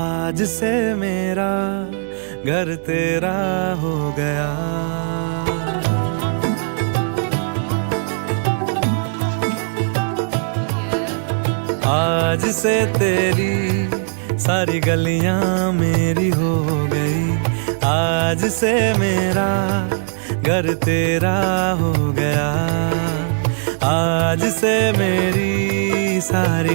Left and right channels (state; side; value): silent; left; digital silence